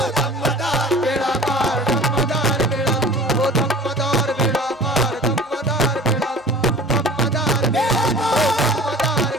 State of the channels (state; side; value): normal; both; correlation 0.42